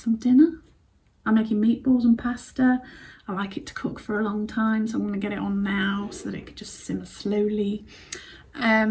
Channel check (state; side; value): identical; both; correlation 1.00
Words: dinner. I'm making meatballs and pasta. I like it to cook for a long time, so I'm gonna get it on now so that it could just simmer slowly.